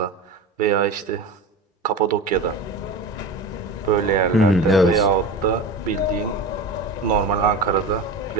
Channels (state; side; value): quieter; left; 3.2 dB